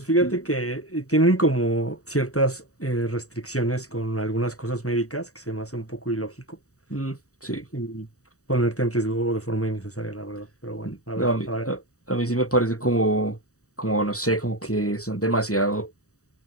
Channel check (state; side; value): late; right; 0.66 ms